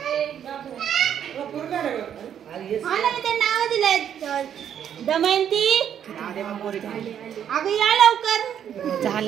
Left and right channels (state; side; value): quieter; left; 9.2 dB